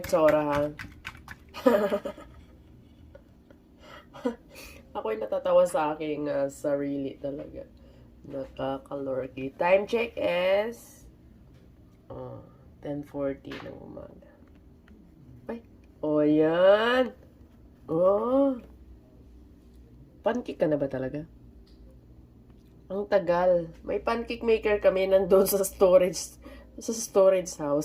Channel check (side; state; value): both; identical; correlation 1.00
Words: itsura ha. Ako'y natatawa sa aking sarili talaga. Nakakalorky. Time check is 10:40 ng umaga. Ay, oh yan. Oh. Pancake ka na ba talaga? Ang tagal. May pancake maker kami nandun sa storage